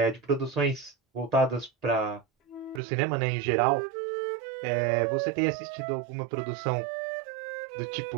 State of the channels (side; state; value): left; drops out; at 2.8 s